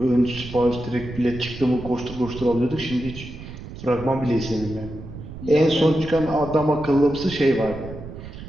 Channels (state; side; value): noise; right; rumble, 12 dB below the sound